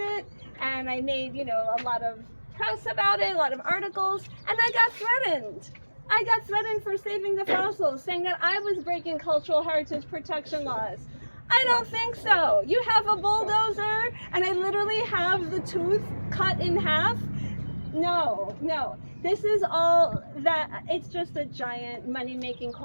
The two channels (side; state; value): both; inverted; correlation -1.00